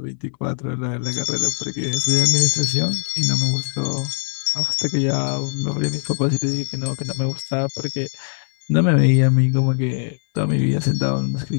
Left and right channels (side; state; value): right; silent; 63 dB below the other